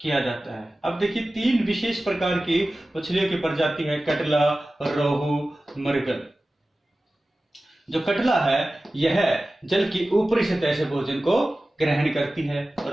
किया जाता है। अब देखिए, तीन विशेष प्रकार की मछलियों की प्रजाति है, कटला, रोहू, मरगल। जो कटला है यह जल की ऊपरी सतह से भोजन को ग्रहण करती है।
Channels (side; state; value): both; normal; correlation 0.96